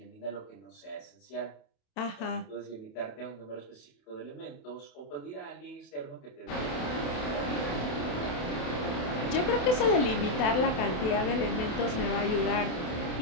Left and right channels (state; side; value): late; right; 28 ms